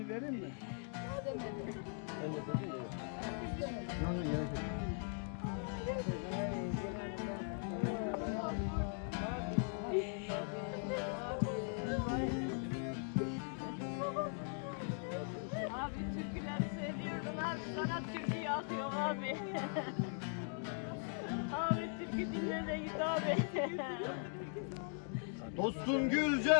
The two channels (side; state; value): right; silent; 51 dB below the other